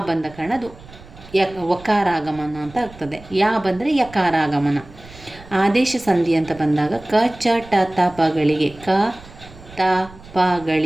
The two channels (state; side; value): noise; right; rumble, 20 dB below the sound